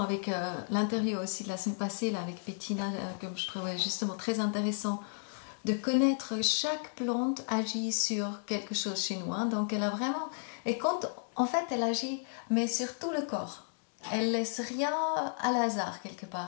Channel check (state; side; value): silent; right; digital silence